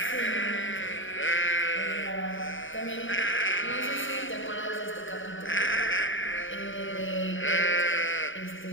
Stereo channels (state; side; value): late; right; 0.57 ms